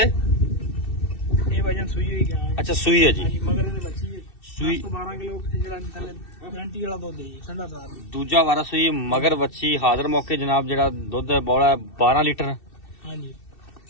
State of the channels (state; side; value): late; right; 2.7 ms